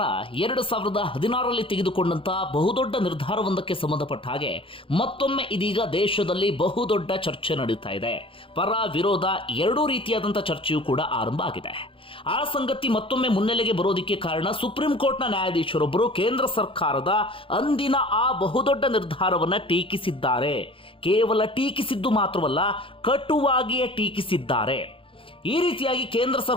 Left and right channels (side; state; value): right; late; 0.26 ms